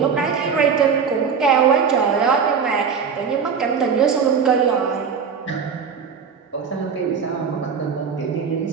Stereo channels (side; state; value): left; quieter; 6.3 dB